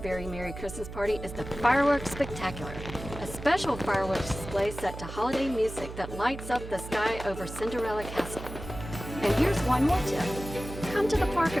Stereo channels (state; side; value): noise; right; hum, 10 dB below the sound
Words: Very Merry Christmas Party is the Fireworks Spectacular, a special fireworks display set to holiday music that lights up the sky over Cinderella Castle. And here's one more tip. Come to the park a